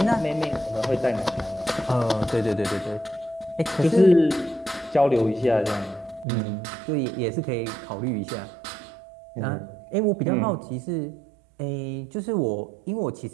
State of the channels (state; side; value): drops out; left; at 6.2 s